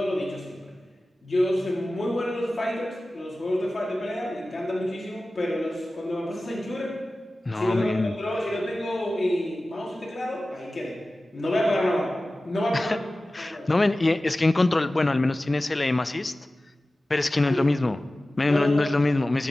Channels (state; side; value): normal; both; correlation 0.96